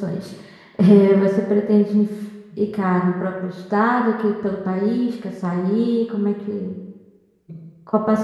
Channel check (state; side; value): identical; both; correlation 1.00